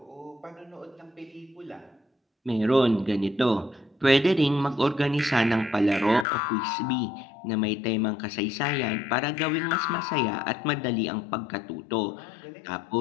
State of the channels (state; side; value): drops out; right; at 6.2 s